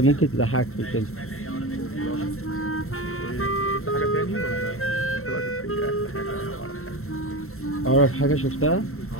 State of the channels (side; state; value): right; late; 0.63 ms